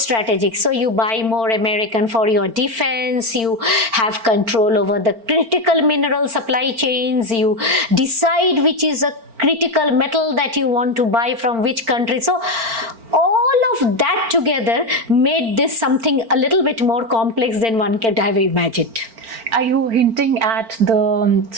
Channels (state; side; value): late; left; 4.4 ms